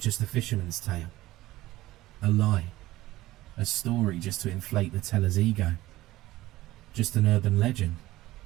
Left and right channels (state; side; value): quieter; left; 16.9 dB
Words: just a fisherman's tale? A lie, a story just to inflate the teller's ego, just an urban legend.